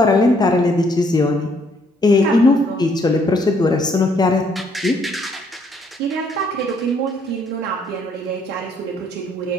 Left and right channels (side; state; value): both; normal; correlation 0.67